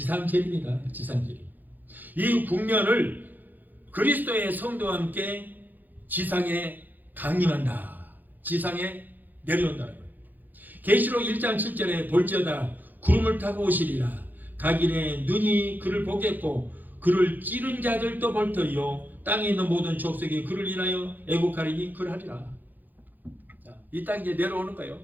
지상재림. 이 국면을 그리스도의 성도와 함께 지상에 강림한다. 지상에 내려온다는 거예요. 계시록 1장 7절에 볼지어다 구름을 타고 오시리라. 각인의 눈이 그를 보겠고 그를 찌른 자들도 볼 터이요 땅에 있는 모든 족속이 그를 인하여 애곡하리니 그러하리라. 자, 이 땅에 이제 내려오는 거예요.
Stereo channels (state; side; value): late; left; 0.085 ms